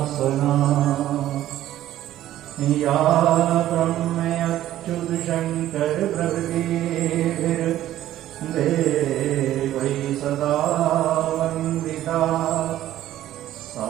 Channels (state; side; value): quieter; left; 13.3 dB